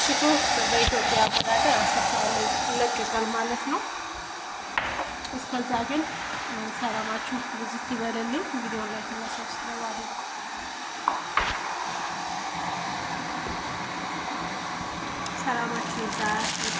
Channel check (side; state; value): both; identical; correlation 1.00